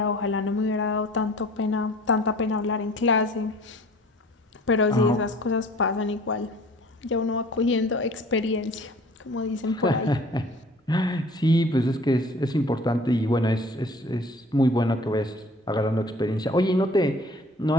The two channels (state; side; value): normal; both; correlation 0.49